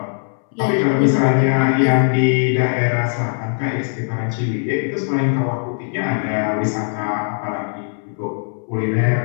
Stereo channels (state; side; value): silent; right; 65 dB below the other